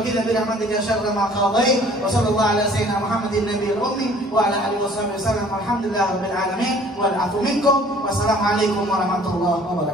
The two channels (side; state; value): both; normal; correlation 0.53